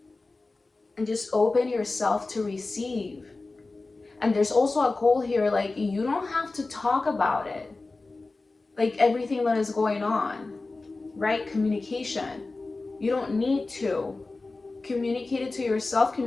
and just open yourself to receive. And there's also a goal here, like you don't have to talk about it, like everything that is going on, right? Communication. You don't need to communicate it to yourself,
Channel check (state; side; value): quieter; right; 3.5 dB